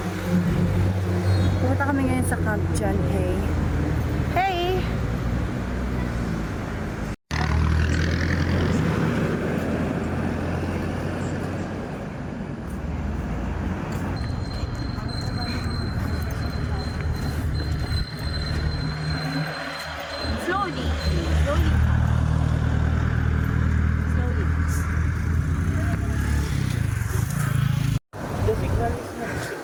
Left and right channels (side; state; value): both; identical; correlation 1.00